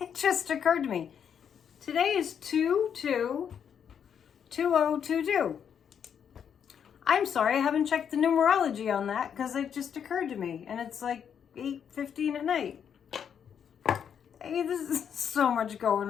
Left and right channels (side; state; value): right; quieter; 8.0 dB